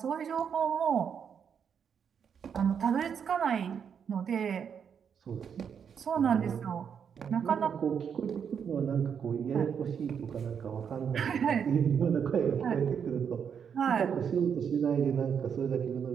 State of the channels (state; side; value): quieter; left; 7.4 dB